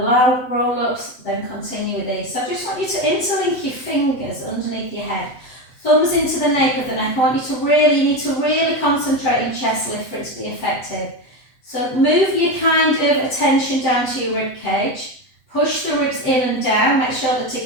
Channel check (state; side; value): late; right; 7.9 ms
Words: roll-ups, then continue with these. So I just want you to interlink your fingers underneath your head. Thumbs into the nape of the neck. I want you need to really concentrate in chest lift for it to be effective. So move your kind of attention down to your rib cage. Push the ribs in and down, make sure they're